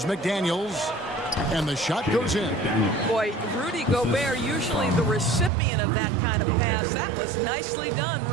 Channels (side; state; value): left; drops out; at 5.5 s